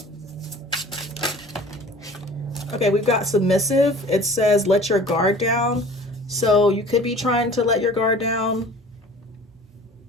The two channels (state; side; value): normal; both; correlation 0.45